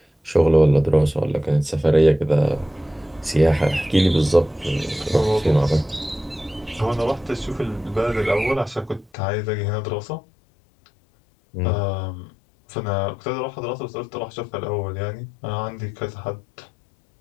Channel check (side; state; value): right; drops out; at 9.1 s